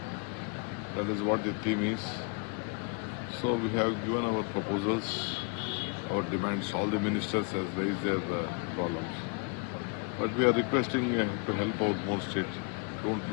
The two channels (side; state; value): right; quieter; 34.1 dB